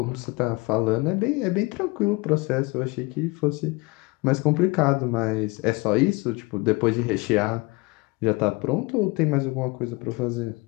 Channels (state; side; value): quieter; right; 25.5 dB